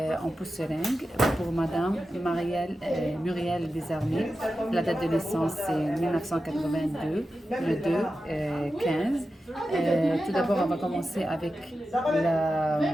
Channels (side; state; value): both; normal; correlation 0.92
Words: en pousse seringue pour Madame Muriel Desarmées. La date de naissance c'est 1982, le 2-15. Tout d'abord, on va commencer avec